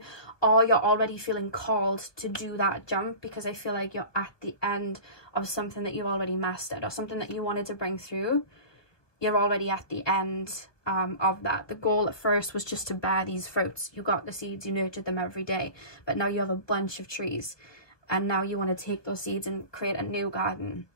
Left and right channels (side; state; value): right; late; 1.2 ms